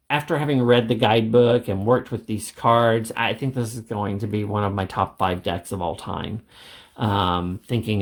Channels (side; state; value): both; identical; correlation 1.00